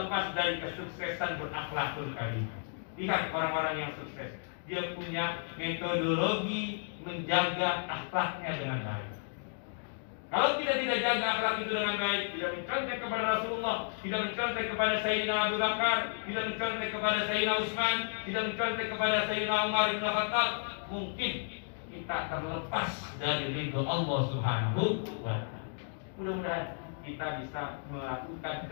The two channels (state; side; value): silent; right; digital silence